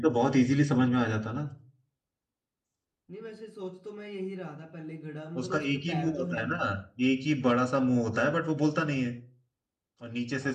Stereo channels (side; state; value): both; identical; correlation 1.00